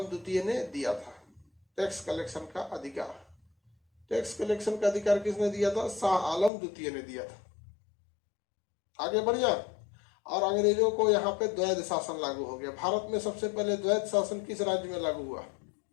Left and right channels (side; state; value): right; drops out; at 6.5 s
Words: द्वितीय ने दिया था टैक्स कलेक्शन का अधिकार। टैक्स कलेक्शन का अधिकार किसने दिया था? शाह आलम द्वितीय ने दिया था। आगे बढ़िया। और अंग्रेजों को यहाँ पे द्वैध शासन लागू हो गया। भारत में सबसे पहले द्वैध शासन किस राज्य में लागू हुआ?